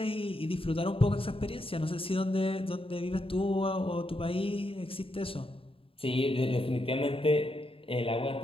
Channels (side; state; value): right; late; 0.27 ms